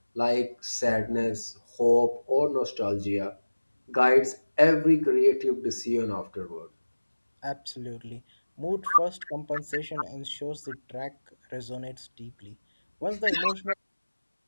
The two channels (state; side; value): inverted; both; correlation -1.00